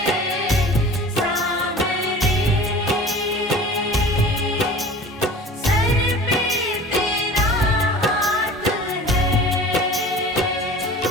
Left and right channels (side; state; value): both; normal; correlation 0.41